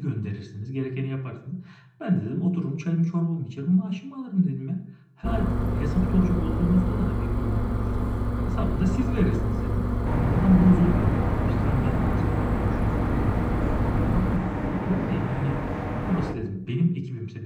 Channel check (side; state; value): both; identical; correlation 1.00